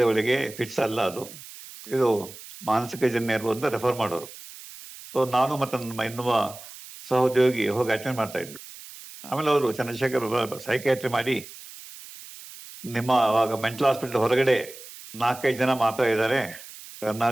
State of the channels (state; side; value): noise; right; hiss, 16 dB below the sound